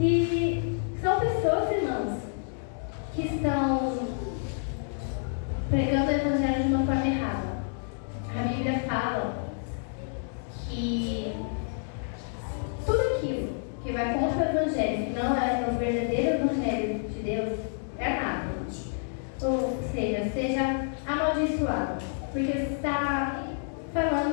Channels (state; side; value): silent; right; digital silence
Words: são pessoas, irmãos, que estão pregando o evangelho de uma forma errada. A Bíblia fala que tudo aquilo que vai contra o evangelho, que não é o verdadeiro evangelho de Deus, é errado. Ou seja, seja amaldiçoado, porque você está